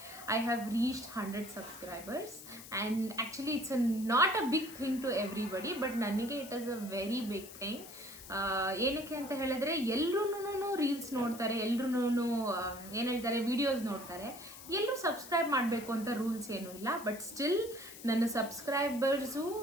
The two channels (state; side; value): noise; left; hiss, 15 dB below the sound